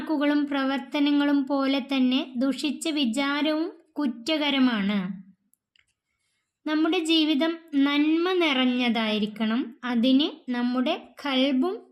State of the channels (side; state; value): both; identical; correlation 1.00